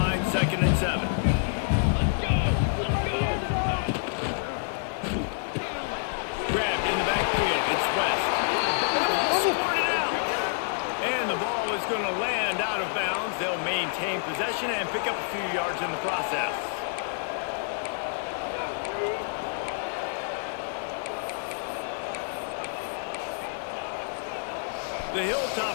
2nd and 7. Grabbed in the backfield. It's West. And the ball squirted out. And the ball is going to land out of bounds. They'll maintain possession and pick up a few yards in the process. The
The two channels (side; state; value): right; silent; digital silence